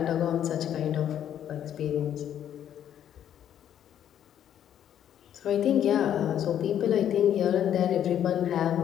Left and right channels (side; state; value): right; quieter; 10.1 dB